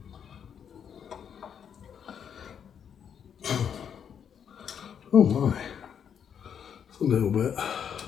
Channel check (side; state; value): right; quieter; 8.0 dB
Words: Oh my, it's a little bit.